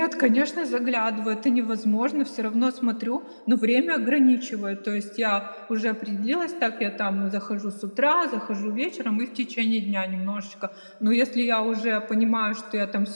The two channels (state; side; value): inverted; both; correlation -1.00